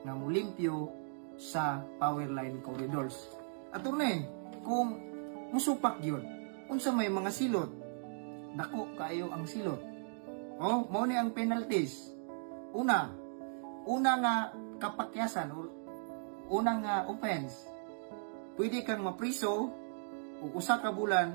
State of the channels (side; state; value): left; silent; digital silence